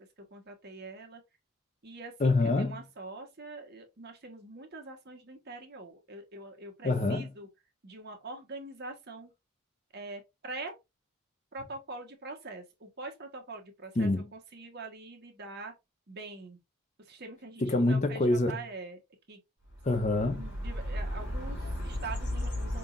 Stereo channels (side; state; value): both; normal; correlation 0.69